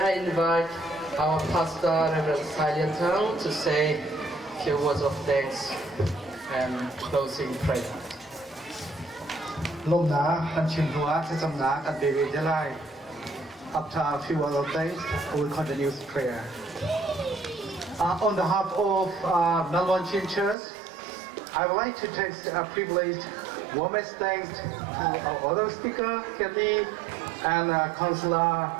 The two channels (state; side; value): drops out; left; at 20.6 s